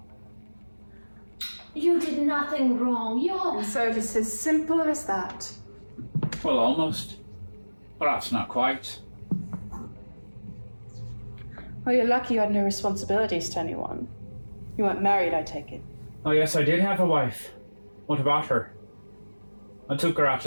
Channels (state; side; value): inverted; both; correlation -1.00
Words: You did nothing wrong. And so it's as simple as that. Well, almost. Perhaps not quite. Well, you're lucky you had no responsibilities to anyone. You weren't married, I take it. Oh yes, I did have a wife. What about her? I took her out